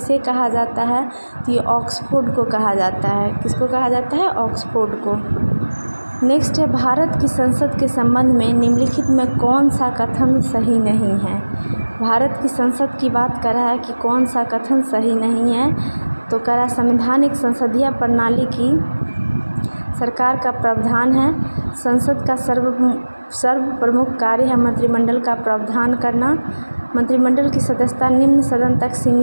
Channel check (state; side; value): inverted; both; correlation -1.00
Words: कहा जाता है? तो ये ऑक्सफोर्ड को कहा जाता है। किसको कहा जाता है? ऑक्सफोर्ड को। नेक्स्ट है, भारत की संसद के संबंध में निम्नलिखित में कौन सा कथन सही नहीं है? भारत की संसद की बात कर रहा है कि कौन सा कथन सही नहीं है? तो कह रहा है, संवैधानिक संसदीय प्रणाली की सरकार का प्रावधान है, संसद का सर्व प्रमुख कार्य है मंत्रिमंडल का प्रावधान करना, मंत्रिमंडल की सदस्यता निम्न सदन तक